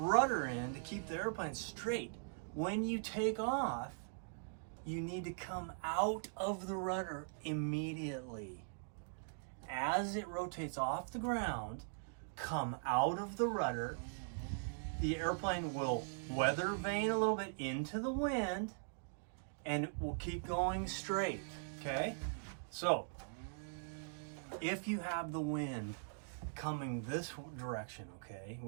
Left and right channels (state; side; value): silent; left; digital silence